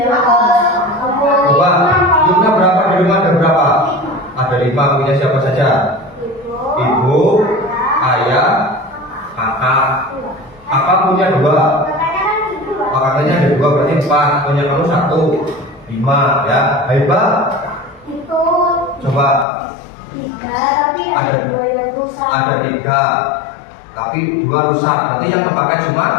Coba, jumlah berapa di rumah ada berapa? Ada 5, punya siapa saja? Ibu, ayah, kakak. Kakak punya 2. Kakaknya ada 2, berarti 4. Punya kamu 1, 5 ya. Hebat. Coba. Ada 3, tapi 2 rusak. Berarti yang terpakai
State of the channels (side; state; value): right; drops out; at 19.5 s